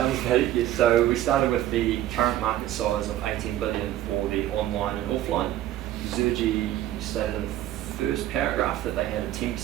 value, yeah, so we started with the current market size of 18 billion for the online and offline. Zuji stated in the first paragraph that they had a 10%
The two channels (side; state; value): left; quieter; 13.4 dB